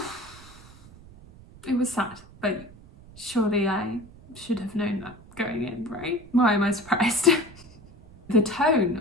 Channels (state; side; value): noise; right; rumble, 21 dB below the sound